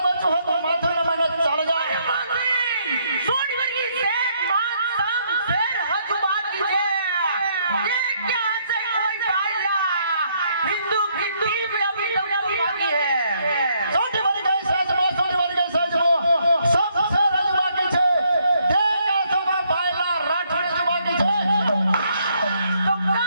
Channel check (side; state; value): both; inverted; correlation -0.71